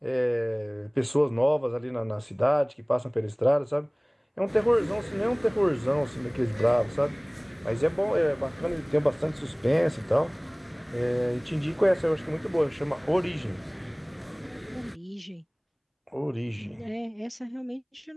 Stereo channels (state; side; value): identical; both; correlation 1.00